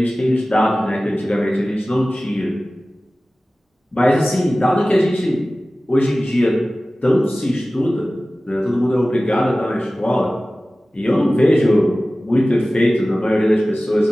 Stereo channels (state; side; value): normal; both; correlation 0.97